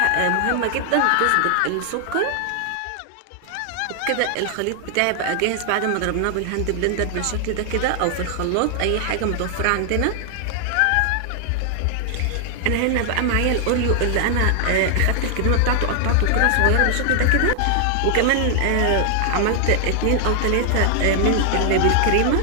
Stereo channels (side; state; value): both; different; correlation 0.00